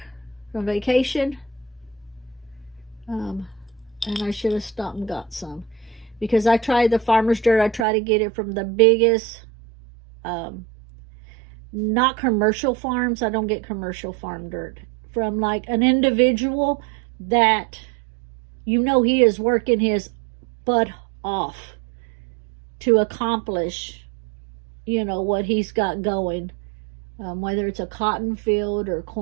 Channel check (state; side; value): drops out; left; at 7.9 s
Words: from vacation. And I should have stopped and got some. Because I tried the farmer's dirt. I try to get it from the biggest, not commercial farms. I don't get commercial farm dirt. From like an individual that, you know, he is working his butt off to accomplish, you know, what he's got going. Whether it's a cotton field or